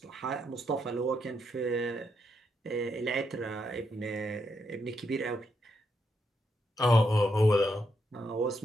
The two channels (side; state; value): both; normal; correlation 0.80